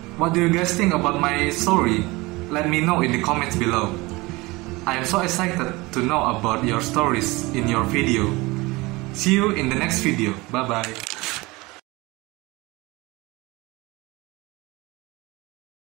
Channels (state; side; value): quieter; left; 22.7 dB